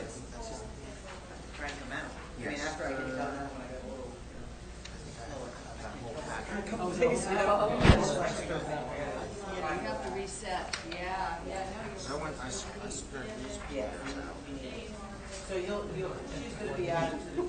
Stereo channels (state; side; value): identical; both; correlation 1.00